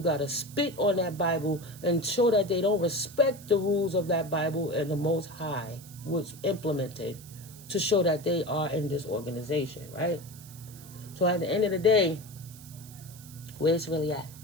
got to spit on that Bible and show that they don't respect the rules of that Bible, and the Most High was implemented to show that they are in this organization, right? So at the end of the day, where it's really at?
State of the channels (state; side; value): noise; right; hiss, 19 dB below the sound